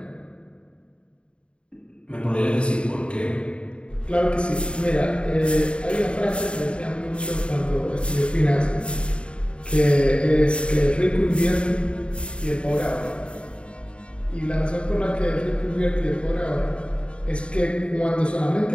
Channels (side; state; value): right; late; 0.055 ms